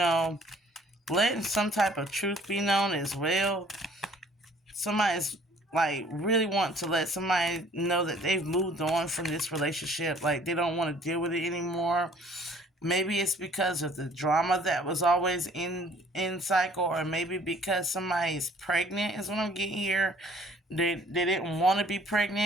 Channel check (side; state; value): both; normal; correlation 0.56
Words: some type of truth be known as well. Somebody's like really want to let somebody know that they've moved on from this relationship. Like they don't want to deal with it anymore. Maybe it's because of the drama that was always in cycle, or maybe because somebody is pregnant is what I'm getting here. They didn't want to be